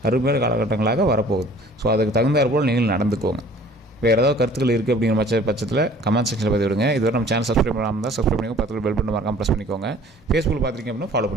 அருமையான காலகட்டங்களாக வரப்போகுது. ஸோ அதுக்கு தகுந்தாற் போல் நீங்கள் நடந்துக்கோங்க. வேறு ஏதாவது கருத்துக்கள் இருக்குது அப்படிங்கிற பட்சத்தில் கமெண்ட் செக்ஷனில் பதிவு விடுங்க. இதுவரை நம்ம சேனல் சப்ஸ்கிரைப் பண்ணாமல் தான் சப்ஸ்கிரைப் பண்ணிக்கோங்க, பக்கத்தில் பெல் பட்டன் மறக்காமல் ப்ரெஸ் பண்ணிக்கோங்க. ஃபேஸ்புக்கில் பார்த்துருக்கீங்க அப்படின்னா ஃபாலோ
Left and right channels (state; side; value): normal; both; correlation 0.51